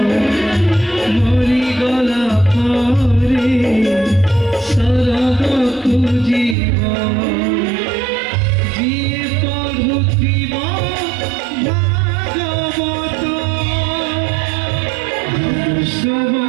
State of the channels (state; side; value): drops out; left; at 6.6 s